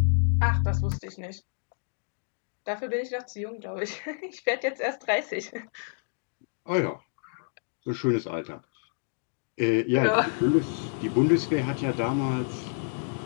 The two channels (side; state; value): right; silent; digital silence